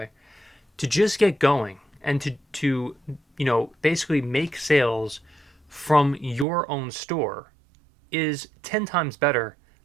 To just get going and to basically make sales from your own store is 10 times better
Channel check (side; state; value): left; drops out; at 6.5 s